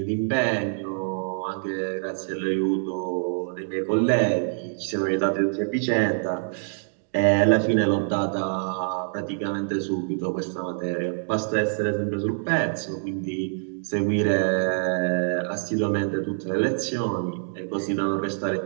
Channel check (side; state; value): left; silent; digital silence